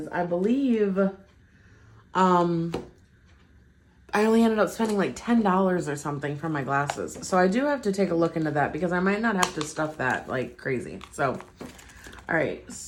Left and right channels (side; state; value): both; identical; correlation 1.00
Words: I believe I only ended up spending like $10 or something for my glasses. So I do have to take a look into that because I might not have to stuff that like crazy. So, all right.